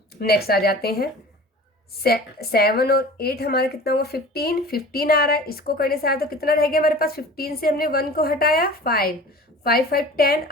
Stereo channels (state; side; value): normal; both; correlation 0.41